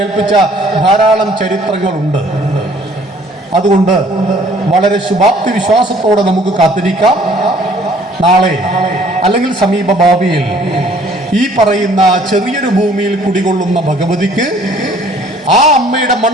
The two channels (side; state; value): both; normal; correlation 0.57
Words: ഏൽപ്പിച്ച ധാരാളം ചരിത്രങ്ങളുണ്ട്. അതുകൊണ്ട് വളരെ ശുഭാപ്തി വിശ്വാസത്തോടെ നമുക്ക് കാത്തിരിക്കാം. നാളെ അല്ലെങ്കിൽ സമീപ ഭാവിയിൽ ഈ പറയുന്ന ചെറിയൊരു ഭൂമിയിൽ കുടികൊള്ളുന്ന ഭഗവതിക്ക് ആ അമ്മയുടെ